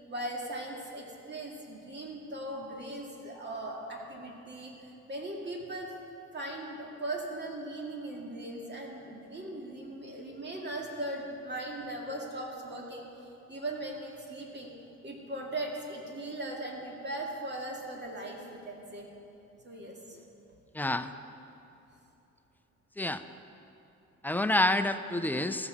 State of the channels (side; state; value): both; normal; correlation 0.32